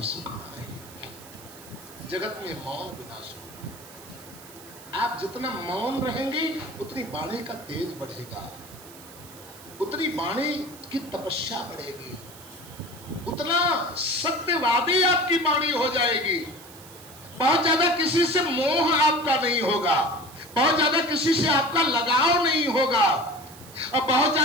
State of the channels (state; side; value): noise; right; hiss, 19 dB below the sound